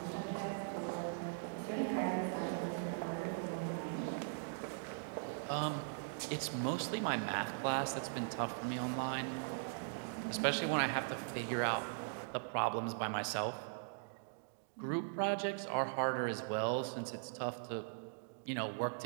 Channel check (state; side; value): silent; left; digital silence